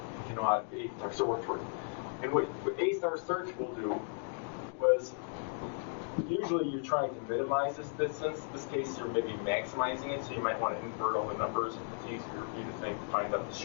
If you know how A-star search works. And what A-star search will do was, usually you're trying to minimize this distance. In this case, you're maybe maximizing it, so you might want to invert all the numbers. It's easier for you to think to find out the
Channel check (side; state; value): right; silent; 54 dB below the other